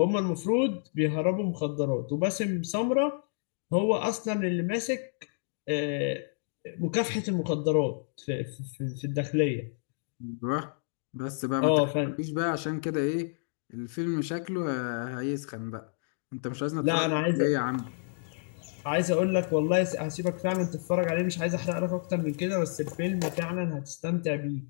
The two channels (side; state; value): right; silent; digital silence